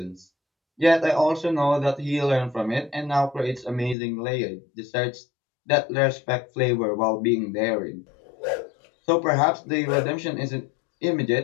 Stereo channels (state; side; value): drops out; right; at 4.0 s